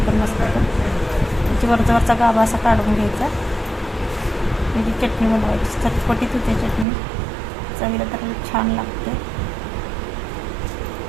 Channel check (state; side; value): drops out; left; at 6.9 s